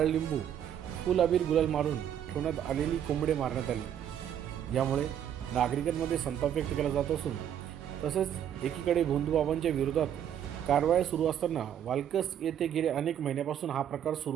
लिंबू फुल अबीर गुलाल मारून ठेवण्यात आलेली कोंबडे मारण्यात आली। यामुळे नागरिकांमध्ये संताप व्यक्त केला जात असून तसेच एकीकडे भोंदूबाबांच्या विरोधात कारवाया सुरू असताना वालकस येथे गेले अनेक महिन्यापासून हा प्रकार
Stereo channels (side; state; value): left; quieter; 9.7 dB